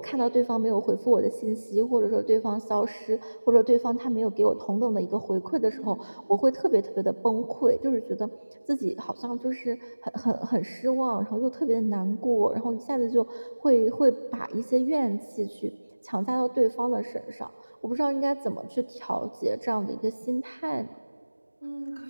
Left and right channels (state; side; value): inverted; both; correlation -1.00